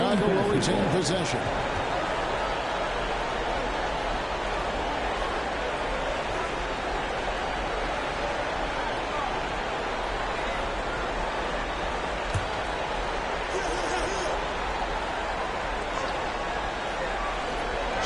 will retain possession.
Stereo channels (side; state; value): both; identical; correlation 1.00